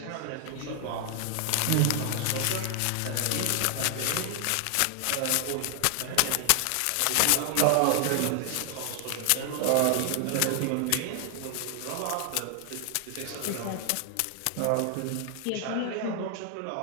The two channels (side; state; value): both; different; correlation 0.00